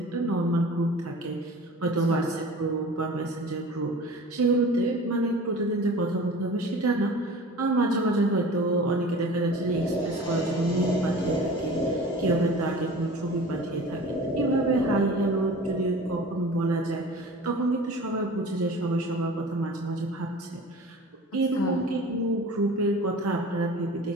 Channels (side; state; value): both; normal; correlation 0.40